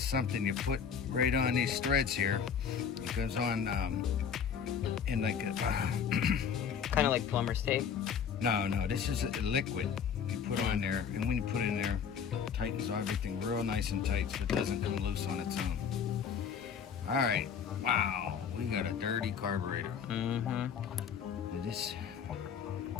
something you put right on these threads here. It goes on in like a... kind of like plumber's tape? No, this is a liquid you put on there, and when you put it in there, it tightens everything real nice and tight so it doesn't come loose on its own. All right, wow, we got a dirty carburetor. Mm-hmm.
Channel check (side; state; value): right; quieter; 7.2 dB